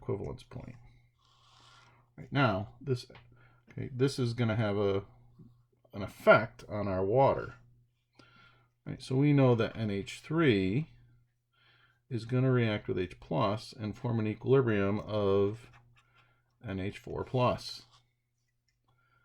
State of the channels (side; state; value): both; identical; correlation 1.00